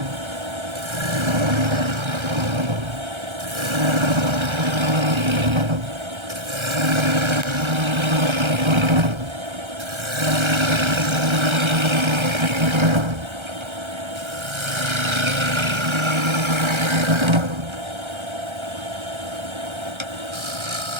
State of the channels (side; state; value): left; late; 1.3 ms